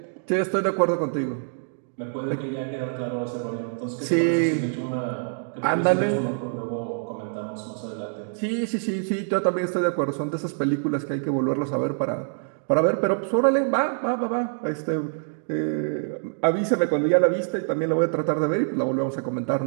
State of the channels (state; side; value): silent; left; digital silence